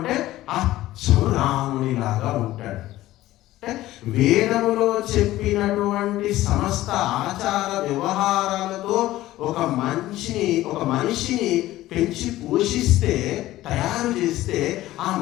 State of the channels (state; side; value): quieter; right; 15.7 dB